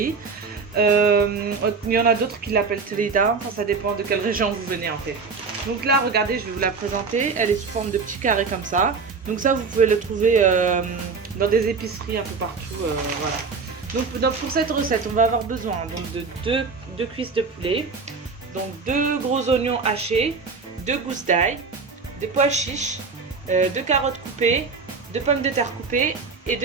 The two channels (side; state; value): left; quieter; 4.8 dB